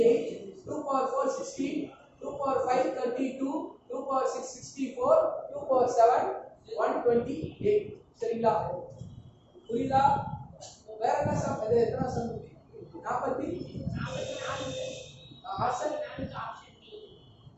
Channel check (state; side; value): identical; both; correlation 1.00